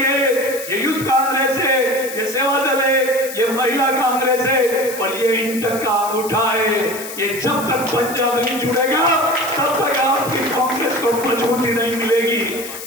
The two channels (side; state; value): left; noise; hiss, 11 dB below the sound